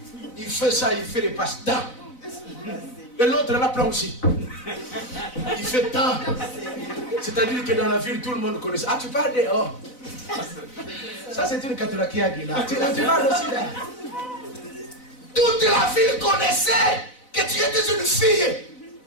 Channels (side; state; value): right; late; 4.0 ms